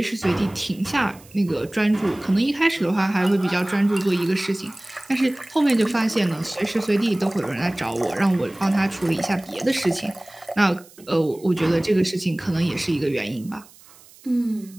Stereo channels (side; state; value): right; noise; hiss, 24 dB below the sound